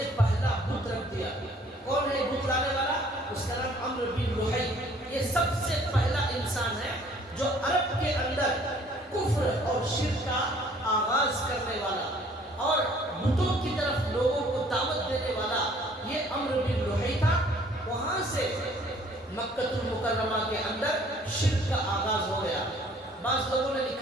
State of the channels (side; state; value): both; normal; correlation 0.57